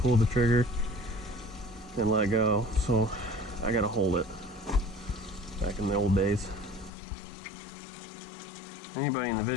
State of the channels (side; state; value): right; drops out; at 6.9 s